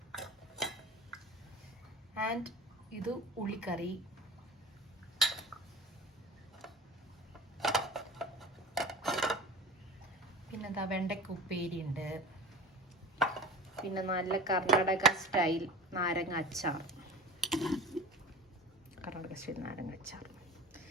ആൻഡ് ഇത് ഉള്ളിക്കറി, പിന്നെന്താ വെണ്ടയ്ക്ക ഉപ്പേരി ഉണ്ട്, പിന്നെ നല്ല കർണാടക സ്റ്റൈൽ നാരങ്ങ അച്ചാർ. കർണാടക സ്റ്റൈൽ നാരങ്ങ അച്ചാർ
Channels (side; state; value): both; normal; correlation 0.35